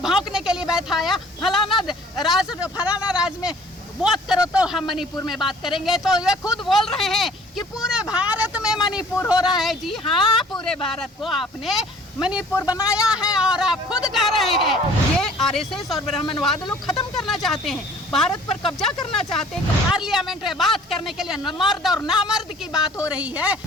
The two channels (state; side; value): normal; both; correlation 0.52